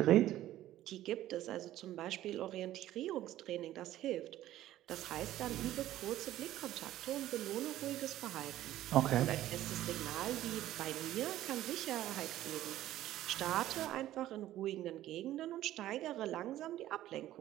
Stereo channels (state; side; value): quieter; left; 13.9 dB